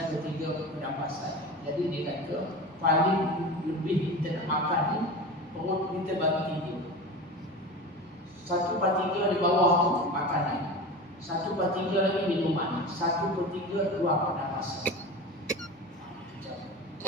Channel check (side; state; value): both; normal; correlation 0.31